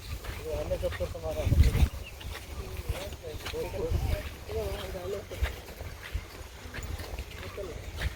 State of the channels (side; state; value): both; identical; correlation 1.00